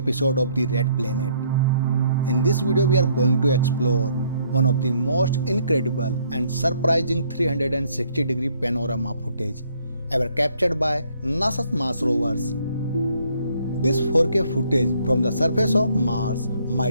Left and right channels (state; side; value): inverted; both; correlation -0.66